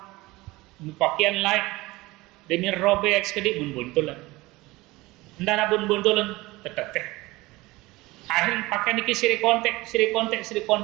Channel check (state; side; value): quieter; left; 20.6 dB